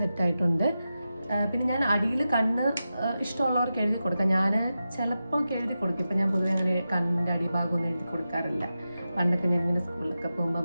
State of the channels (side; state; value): both; inverted; correlation -0.91